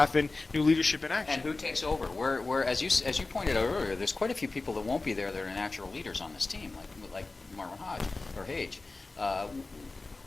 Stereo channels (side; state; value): right; quieter; 3.5 dB